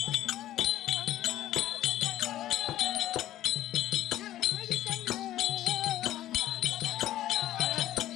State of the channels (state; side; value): quieter; right; 13.5 dB